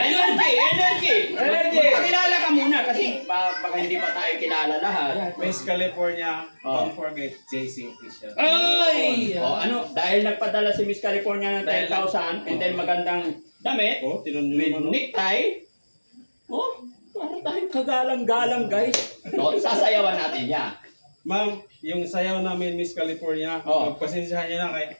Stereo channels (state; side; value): inverted; both; correlation -1.00